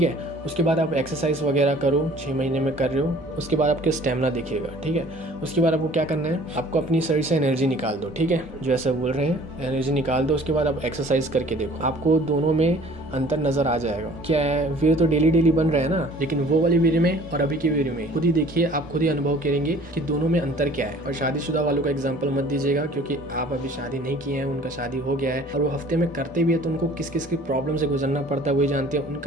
है। उसके बाद आप एक्सरसाइज वगैरह करो, 6 महीने में कर रहे हो, उसके बाद आपके स्टेमिना दिखेगा, ठीक है। उसके बाद आपको क्या करना है, आपको अपनी शरीर से एनर्जी निकाल दो, ठीक है, जो ऐसा बोल रहे हैं एनर्जी निकाल दो। उसके बाद आप एक्सरसाइज करके देखो, आपको दोनों में अंतर नजर आ जाएगा। क्या है, वीर्य तो डेली बन रहा है ना, लेकिन वो वाले वीर्य में और अभी के वीर्य में खुद ही देखिए, आप खुद ही अनुभव करेंगे कि दोनों में अंतर क्या है। और शादीशुदा वालों का एग्जाम्पल मत दीजिएगा, क्योंकि आप अभी शादी नहीं किए हैं, उनका शादी हो गया है और वो हफ्ते में करते भी है, तो उनको किस किस की प्रॉब्लम से गुजरना पड़ता है वही जानते हैं।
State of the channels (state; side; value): normal; both; correlation 0.51